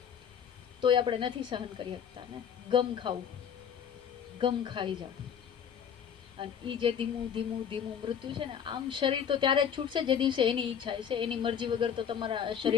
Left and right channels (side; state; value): right; quieter; 8.0 dB